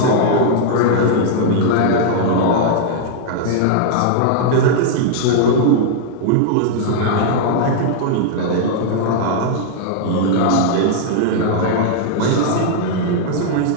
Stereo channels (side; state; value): both; different; correlation -0.01